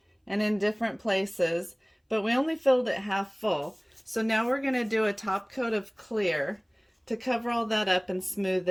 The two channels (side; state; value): both; identical; correlation 1.00